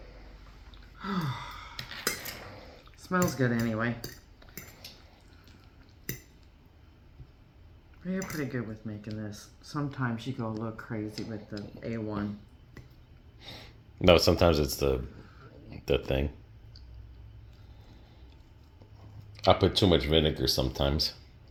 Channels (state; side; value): identical; both; correlation 1.00